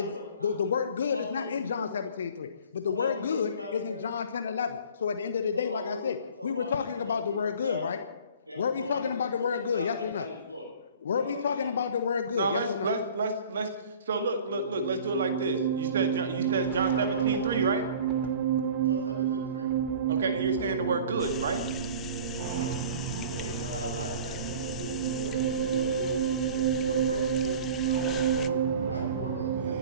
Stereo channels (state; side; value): inverted; both; correlation -0.45